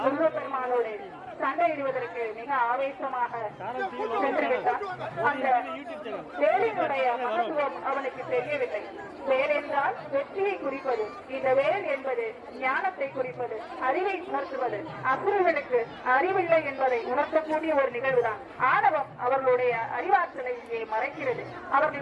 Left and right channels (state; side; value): identical; both; correlation 1.00